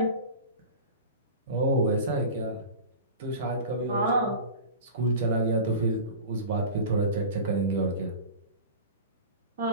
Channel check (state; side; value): inverted; both; correlation -0.33